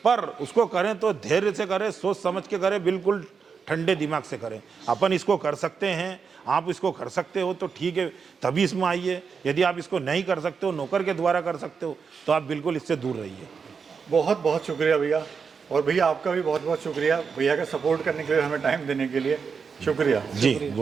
पर उसको करें तो धैर्य से करें, सोच समझ के करें, बिल्कुल ठंडे दिमाग से करें। अपन इसको कर सकते हैं, आप इसको कर सकते हो तो ठीक है, तभी इसमें आइए। यदि आप इसको नहीं कर सकते हो, नौकर के द्वारा कर सकते हो, तो आप बिल्कुल इससे दूर रहिए। बहुत बहुत शुक्रिया भैया, और भैया आपका भी बहुत बहुत शुक्रिया भैया का सपोर्ट करने के लिए, हमें टाइम देने के लिए। शुक्रिया जी,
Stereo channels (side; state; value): left; quieter; 5.8 dB